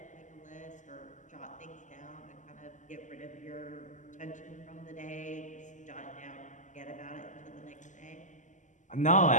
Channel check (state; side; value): late; right; 0.36 ms